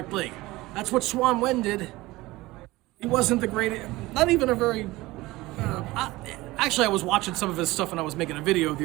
league. That's what Swan Wen did. He wasn't the greatest. Not even a very. Actually, I was watching some of his stuff when I was making a video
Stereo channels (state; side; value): quieter; left; 19.6 dB